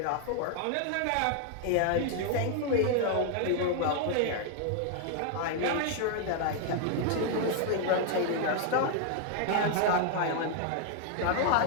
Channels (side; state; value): both; different; correlation 0.00